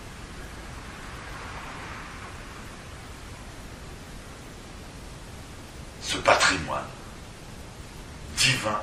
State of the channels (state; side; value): identical; both; correlation 1.00